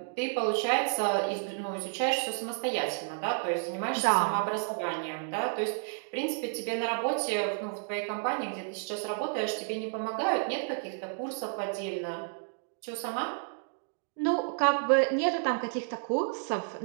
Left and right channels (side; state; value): left; silent; 57 dB below the other